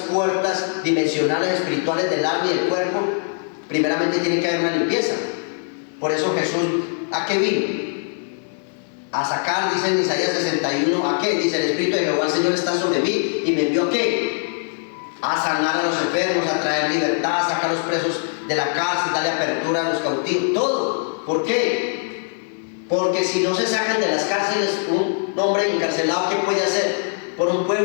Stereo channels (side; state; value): right; silent; 61 dB below the other